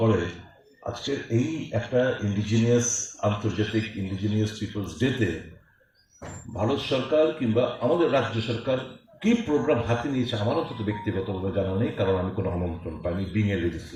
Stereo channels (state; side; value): identical; both; correlation 1.00